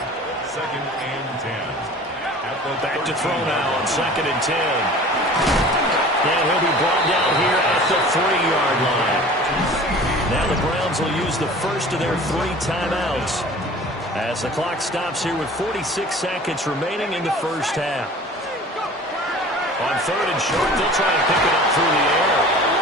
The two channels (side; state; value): both; normal; correlation 0.43